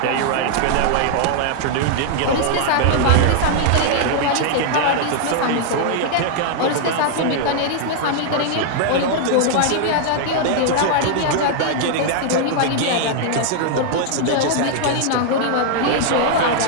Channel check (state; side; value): different; both; correlation -0.01